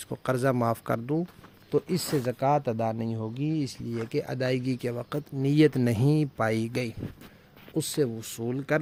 کو قرضہ معاف کر دوں، تو اس سے زکوٰۃ ادا نہیں ہوگی، اس لیے کہ ادائیگی کے وقت نیت نہیں پائی گئی۔ اس سے وصول کر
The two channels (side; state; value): both; identical; correlation 1.00